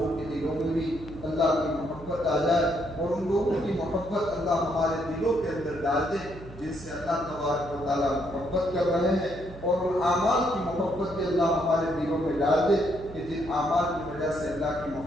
کے دلوں میں بھی اللہ کی محبت آ جائے، اور ان لوگوں کی محبت اللہ ہمارے دلوں کے اندر ڈال دے جن سے اللہ تبارک و تعالیٰ محبت کر رہے ہیں، اور ان اعمال کی محبت بھی اللہ ہمارے دلوں میں ڈال دے کہ جن اعمال کی وجہ سے اللہ کی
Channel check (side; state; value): right; noise; hum, 16 dB below the sound